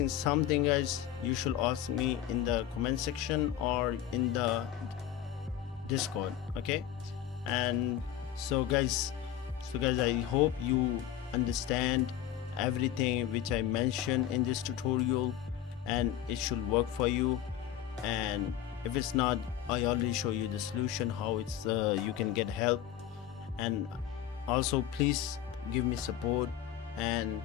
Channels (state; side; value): quieter; right; 10.8 dB